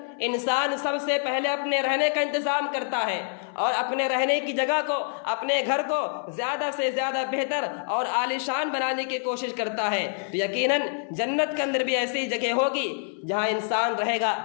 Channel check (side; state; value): right; silent; 59 dB below the other